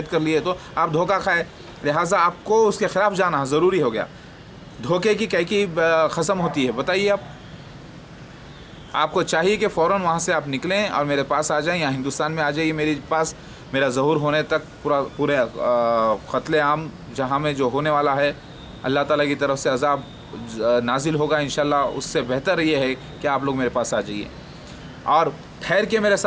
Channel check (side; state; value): both; identical; correlation 1.00